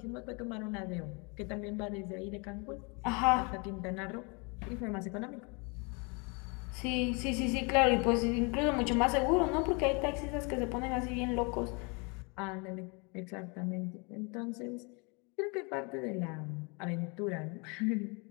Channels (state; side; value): quieter; right; 31.5 dB